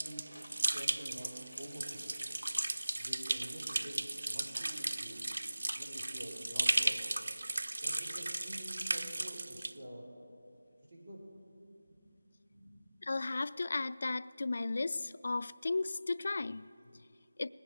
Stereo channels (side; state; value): both; inverted; correlation -0.97